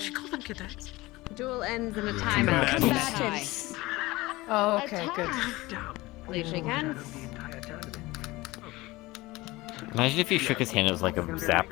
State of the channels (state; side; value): quieter; right; 20.3 dB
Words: called them cadets. Duel ends in a timeout. Combatants. Oh, okay, good. Please shake hands. Imagine if he shook his hand, it was like a